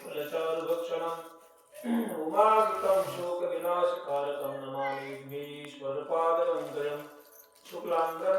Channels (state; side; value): identical; both; correlation 1.00